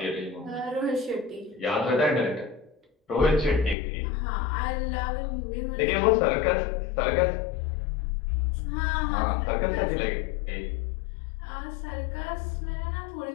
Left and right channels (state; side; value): drops out; right; at 3.8 s